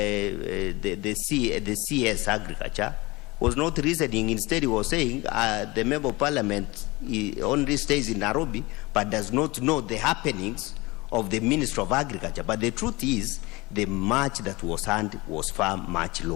CS Agriculture was not reasoning. Instead, he was saying the Member of Parliament only stays in Nairobi but does not know the happenings of the Minister of Agriculture. But the truth is, the match that was earned was far much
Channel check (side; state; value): right; quieter; 23.1 dB